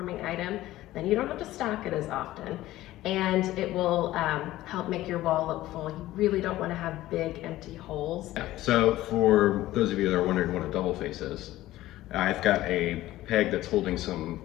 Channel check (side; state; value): right; quieter; 15.7 dB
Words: item. Then you don't have to stock it as often. And it will help make your wall look full. You really don't want to have big empty holes. Yeah. So for those of you that are wondering what a double face is, I've got a peg that's holding some